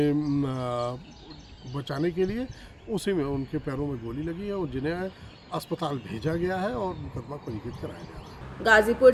बचाने के लिए, उसी में उनके पैरों में गोली लगी है और जिन्हें अस्पताल भेजा गया है और मुकदमा पंजीकृत कराया गया है। गाजीपुर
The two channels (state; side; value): identical; both; correlation 1.00